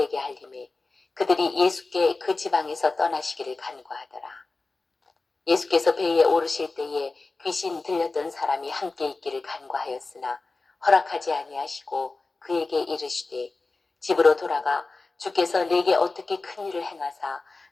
알림해 그들이 예수께 그 지방에서 떠나시기를 간구하더라. 예수께서 배에 오르실 때에 귀신 들렸던 사람이 함께 있기를 간구하였으나 허락하지 아니하시고 그에게 이르시되 집으로 돌아가 주께서 내게 어떻게 큰 일을 행하사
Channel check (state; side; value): quieter; right; 3.6 dB